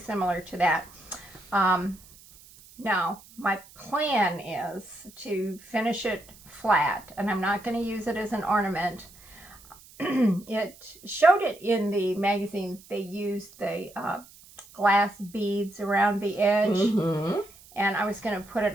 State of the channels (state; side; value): noise; right; hiss, 23 dB below the sound